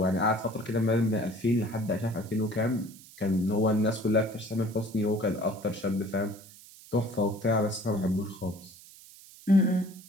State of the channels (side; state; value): right; noise; hiss, 20 dB below the sound